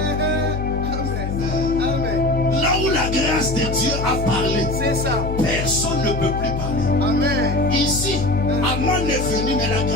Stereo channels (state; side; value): noise; left; hum, 4 dB below the sound